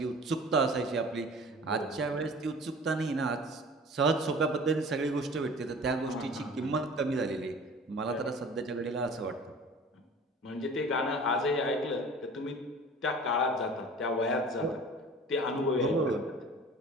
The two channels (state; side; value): normal; both; correlation 0.43